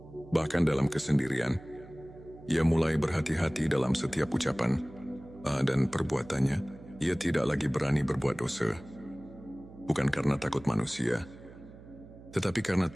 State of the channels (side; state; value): right; noise; hum, 18 dB below the sound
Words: Bahkan dalam kesendirian, ia mulai berhati-hati dalam setiap ucapan dan perbuatannya. Ia tidak lagi berani berbuat dosa. Bukan karena takut manusia, tetapi karena